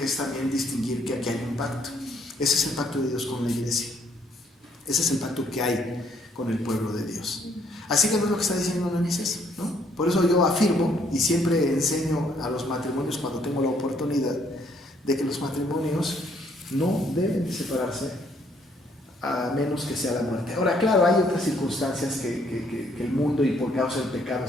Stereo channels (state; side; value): normal; both; correlation 0.67